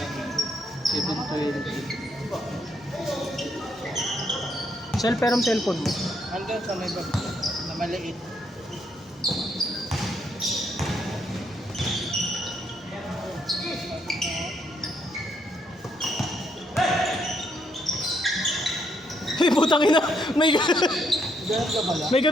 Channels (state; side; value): normal; both; correlation 0.74